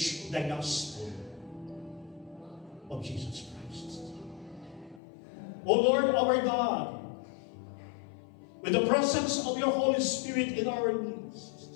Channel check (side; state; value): right; drops out; at 5.0 s